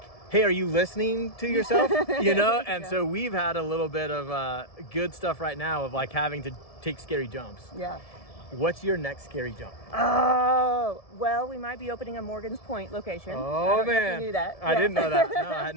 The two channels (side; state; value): right; late; 1.7 ms